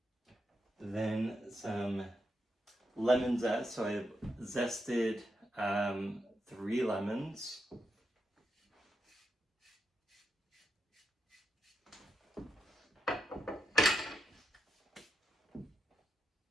Then some lemon zest. So I've zested 3 lemons.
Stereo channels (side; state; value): both; normal; correlation 0.84